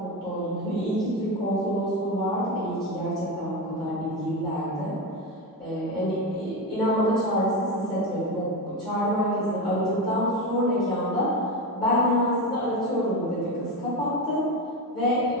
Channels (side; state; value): both; normal; correlation 0.17